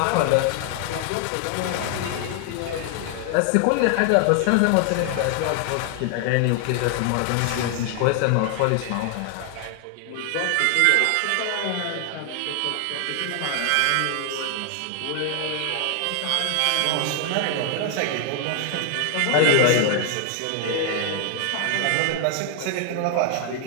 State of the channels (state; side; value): different; both; correlation 0.00